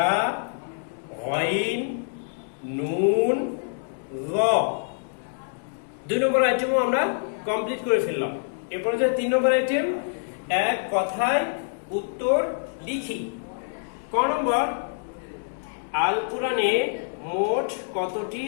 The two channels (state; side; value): silent; right; digital silence